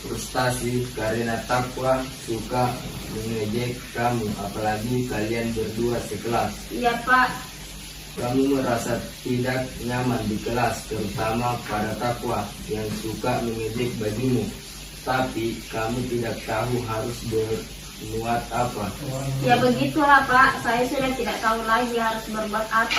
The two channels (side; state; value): both; identical; correlation 1.00